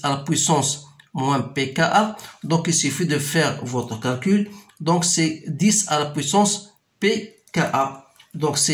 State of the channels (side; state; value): both; identical; correlation 1.00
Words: à la puissance moins pKa. Donc il suffit de faire votre calcul. Donc c'est 10 à la puissance pKa. Donc